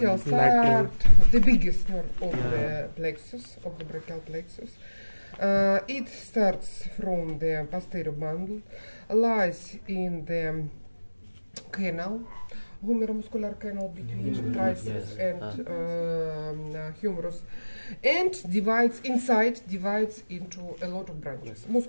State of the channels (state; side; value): inverted; both; correlation -1.00